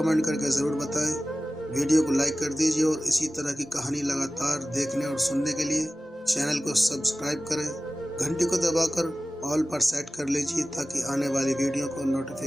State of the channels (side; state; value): both; normal; correlation 0.96